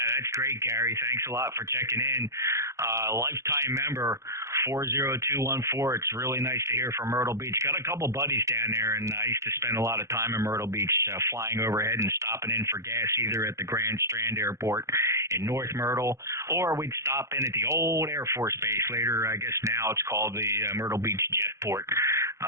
that's great, Gary. Thanks a lot for checking in. Lifetime member, 40214. It's really nice to hear from Myrtle Beach. Got a couple buddies down there, and I used to spend a lot of time in Myrtle Beach flying overhead and stopping in for gas either at the Grand Strand Airport in North Myrtle, or we'd stop in at the old Air Force Base. Later, I guess now it's called the Myrtle Beach Jetport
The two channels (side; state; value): left; late; 0.14 ms